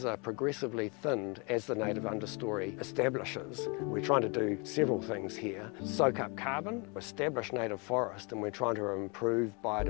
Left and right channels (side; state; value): right; quieter; 31.6 dB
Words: are progressively thinned as the native understory establishes. We're trying to do several things here. Soak up carbon, establish native forest, and we're trying to improve